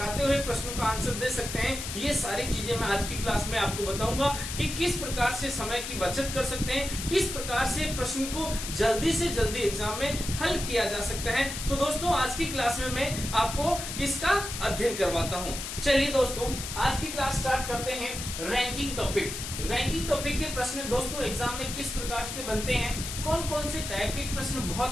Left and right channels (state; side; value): noise; left; hiss, 6 dB below the sound